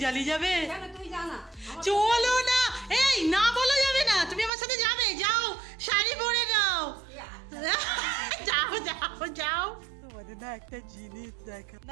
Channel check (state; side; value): drops out; left; at 4.5 s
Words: যাবে? তুই জানা চলো না। এই না, বলা যাবে না। তুমি আমার সাথে যাবে, যাও, শাড়ি পরে নাও। যাও যাও যাও। তোমাদের না একটা জিনিস দেখা